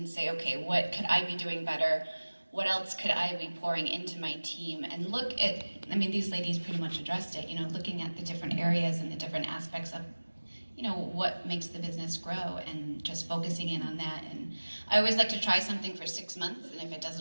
say, okay, what could I be doing better? What else could I be pouring into my team? And look at, I mean, these ladies pretty much addressed it, looking at the different areas and the different aspects of, what makes the business grow, and just focusing in on that. And I always like to try something for 6 months, and if it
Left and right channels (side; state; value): both; inverted; correlation -1.00